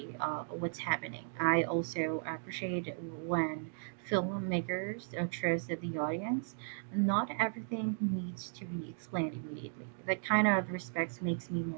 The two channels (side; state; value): left; silent; digital silence